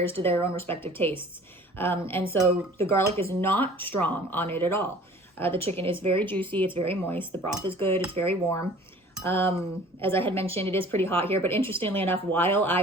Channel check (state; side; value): normal; both; correlation 0.48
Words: to their own respective tastes. And so the garlic is not strong on it at all. The chicken is very juicy. It's very moist. The broth is good. It's very warm. As I had mentioned, it is pretty hot here, but interestingly enough, while